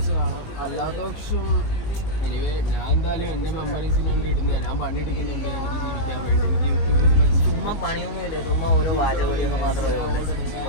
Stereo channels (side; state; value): right; late; 19 ms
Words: കാണാം. അല്ലാത്ത പക്ഷം എനിവേ ഞാൻ എന്തായാലും എൻ്റെ മെമ്മറീസിന് വേണ്ടി ഇടുന്നത്. ഞാൻ പണിയെടുക്കുന്നുണ്ട് എനിക്ക് ജീവിക്കാൻ വേണ്ടി. എനിക്ക് യൂട്യൂബിൽ ചുമ്മാ പണിയൊന്നുമില്ല, ചുമ്മാ ഓരോ വാചകോടിയൊക്കെ മാത്രമേ ഉള്ളൂ.